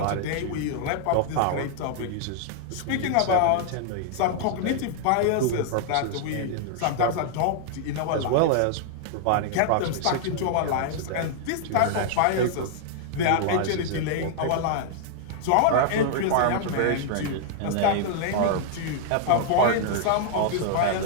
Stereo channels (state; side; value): different; both; correlation -0.01